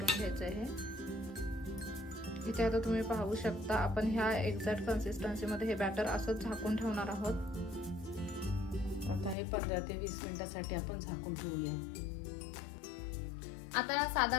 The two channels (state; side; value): drops out; right; at 9.3 s